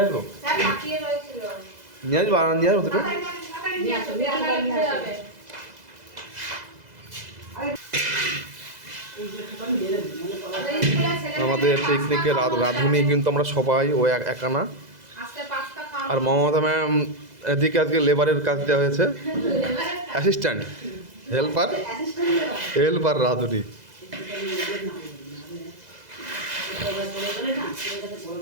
আসবো আমাদের পিকনিকের রাঁধুনি কিন্তু আমরা সবাই ও একানা। আর মমতা ম্যাম এদিকে আজকে লেবারের কাজ দেওয়া হয়েছে, অ্যাসিস্ট্যান্ট, হেল্পার রাঁধুনি।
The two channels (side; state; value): left; late; 2.0 ms